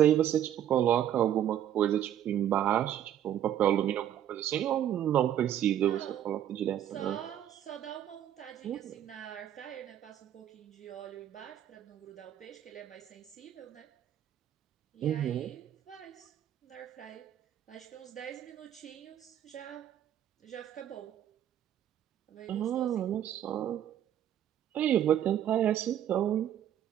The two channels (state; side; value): quieter; left; 10.7 dB